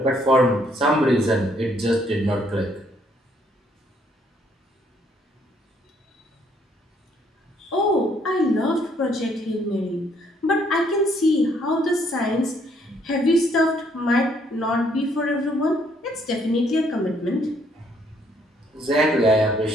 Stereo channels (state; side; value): normal; both; correlation 0.67